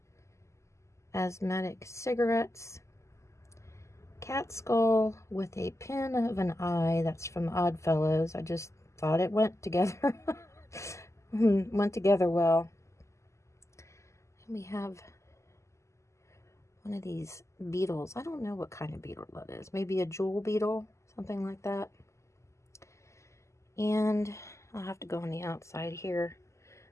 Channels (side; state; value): right; late; 0.14 ms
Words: Asthmatic cigarettes. Cat skull with a pin of an eye. That's from Oddfellows. I just thought it went together. Went together well. And we have one of these beetles. I don't know what kind of beetle that is. Maybe a jewel beetle, something like that. And I'll have to go on the outside here.